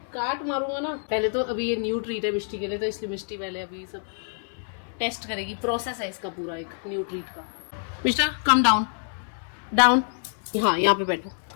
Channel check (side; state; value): right; silent; 60 dB below the other